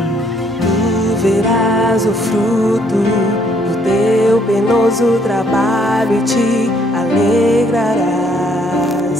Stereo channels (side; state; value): both; normal; correlation 0.66